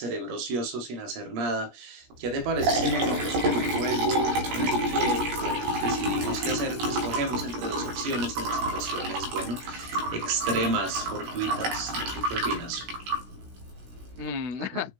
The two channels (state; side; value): late; left; 17 ms